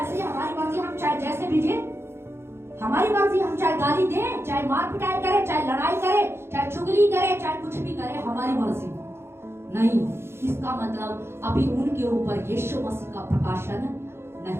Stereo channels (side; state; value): left; late; 0.12 ms